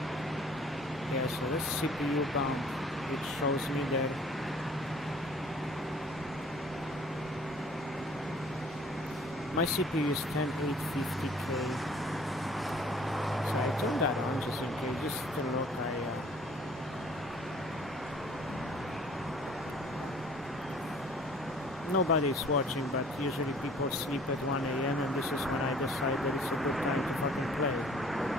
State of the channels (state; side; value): normal; both; correlation 0.53